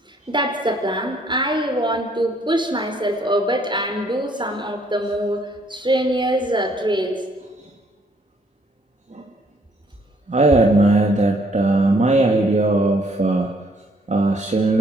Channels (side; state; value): both; normal; correlation 0.65